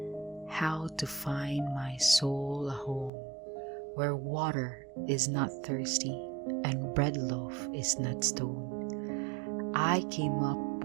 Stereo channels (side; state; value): left; drops out; at 3.1 s